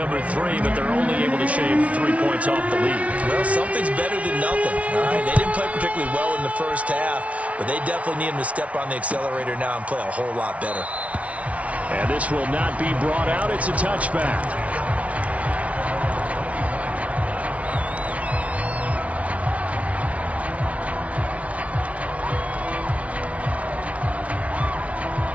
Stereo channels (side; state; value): left; late; 0.065 ms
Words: 3, but they're only able to shave 3 points off the lead. Well, something's better than nothing. All right, they didn't play particularly well in the first half, but they definitely need him to step on the accelerator now and play a whole lot better. And this will not be brought out. It's a touchback.